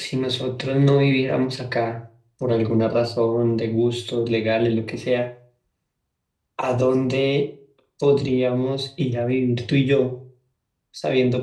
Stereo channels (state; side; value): identical; both; correlation 1.00